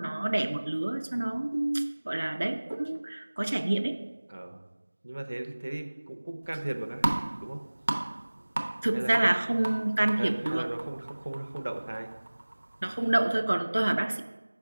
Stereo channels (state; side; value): inverted; both; correlation -1.00